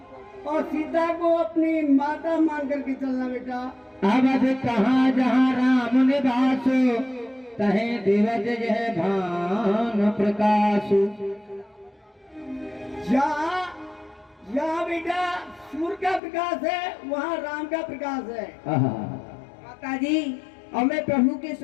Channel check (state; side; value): drops out; right; at 16.2 s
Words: सीता को अपनी माता मान करके चलना। बेटा, अवध कहाँ जहाँ राम निवास, तहे दिवज जह भान प्रकाश। जहाँ बेटा सूर्य का प्रकाश है, वहाँ राम का प्रकाश है। माता जी, अब मैं प्रभु के